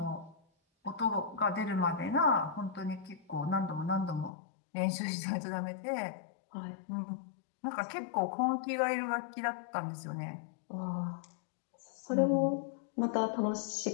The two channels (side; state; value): right; drops out; at 4.3 s